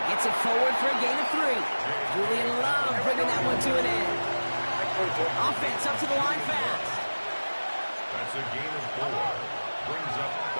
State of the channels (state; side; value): inverted; both; correlation -1.00